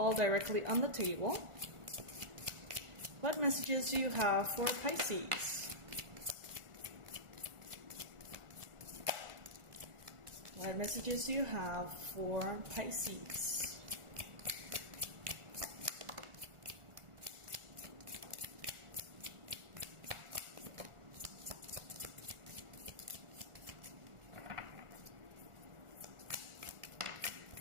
directly on the table. What messages do you have for Pisces? What messages do you have for Pisces?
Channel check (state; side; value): late; left; 1.4 ms